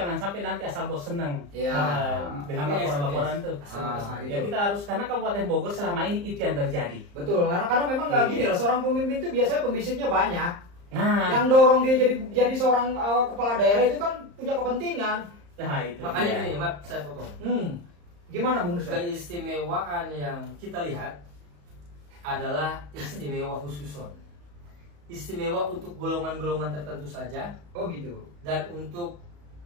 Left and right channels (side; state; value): left; late; 34 ms